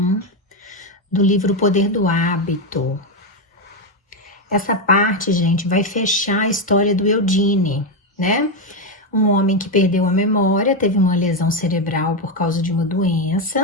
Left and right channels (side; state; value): both; normal; correlation 0.07